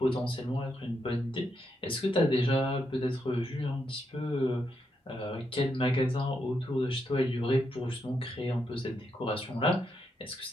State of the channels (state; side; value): normal; both; correlation 0.81